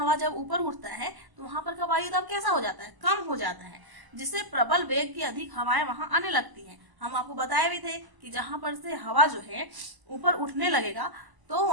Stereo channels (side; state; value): left; late; 1.0 ms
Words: जब ऊपर उठता है तो वहां पर का वायु दाब कैसा हो जाता है, कम हो जाता है, जिससे प्रबल वेग की अधिक हवाएं वहां आने लगती हैं। हम आपको बताए भी थे कि जहां पर से हवा जो है ऊपर उठने लगेगा तो